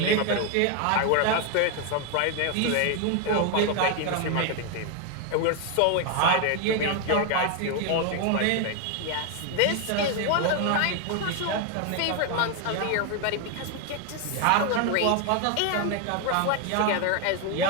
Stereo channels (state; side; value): different; both; correlation 0.01